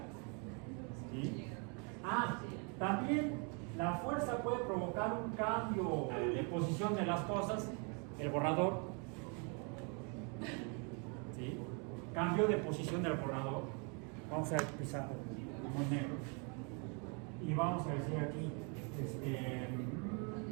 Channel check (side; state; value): left; quieter; 35.9 dB